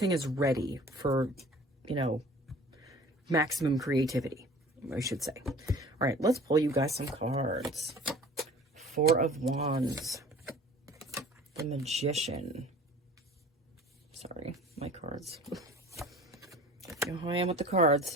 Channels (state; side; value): normal; both; correlation 0.45